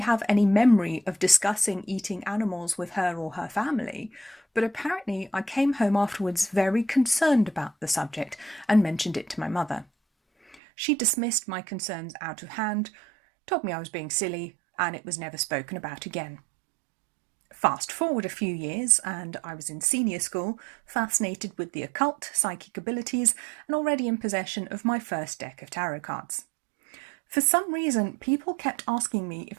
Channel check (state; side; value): drops out; left; at 10.6 s